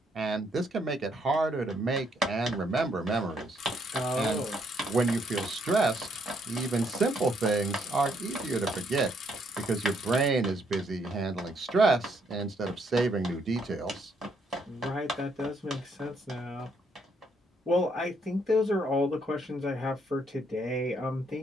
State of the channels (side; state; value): both; normal; correlation 0.71